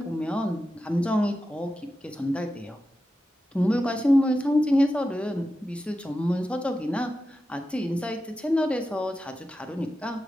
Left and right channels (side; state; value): both; normal; correlation 0.91